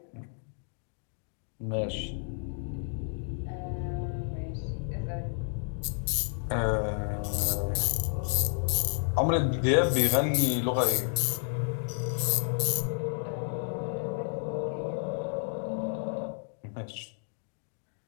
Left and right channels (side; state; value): right; silent; 57 dB below the other